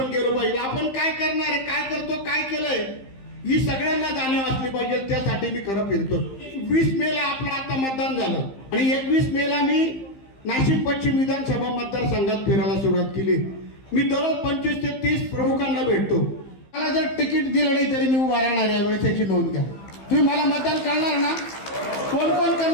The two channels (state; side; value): late; right; 15 ms